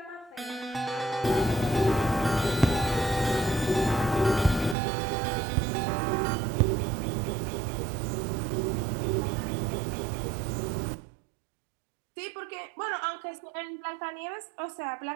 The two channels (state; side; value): drops out; left; at 4.8 s